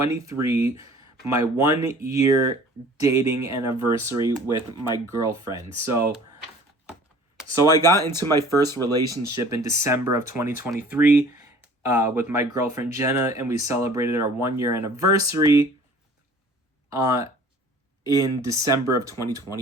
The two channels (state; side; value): normal; both; correlation 0.49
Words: my 1 year dating anniversary with my girlfriend. So I got into my first relationship in December of 2023 with my girlfriend Jenna, and we celebrated our 1 year anniversary in December of